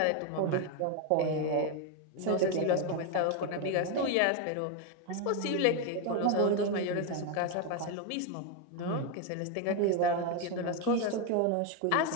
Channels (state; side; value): different; both; correlation 0.01